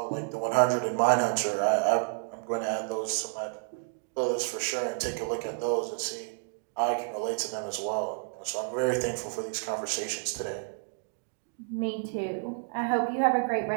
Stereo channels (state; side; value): silent; left; digital silence